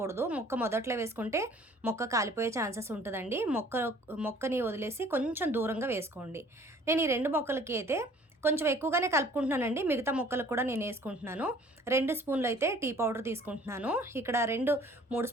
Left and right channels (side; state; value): both; normal; correlation 0.53